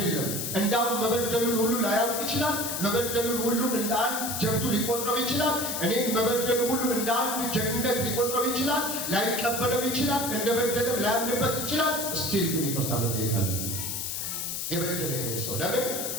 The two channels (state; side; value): noise; left; hiss, 3 dB below the sound